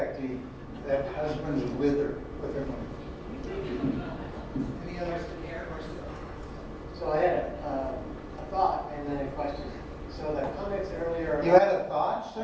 that husbands wither with their money. Any others? So I had a thought and then a question. So the comments earlier. You had a thought,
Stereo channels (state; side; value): identical; both; correlation 1.00